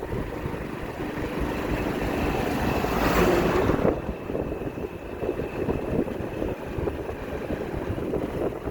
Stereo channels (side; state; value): both; identical; correlation 1.00